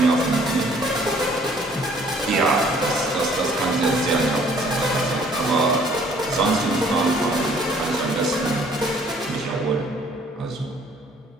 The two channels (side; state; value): both; normal; correlation 0.59